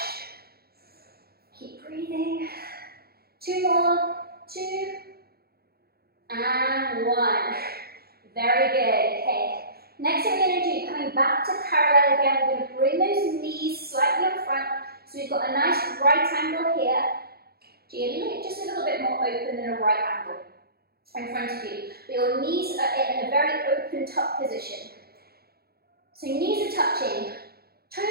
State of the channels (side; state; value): left; late; 0.45 ms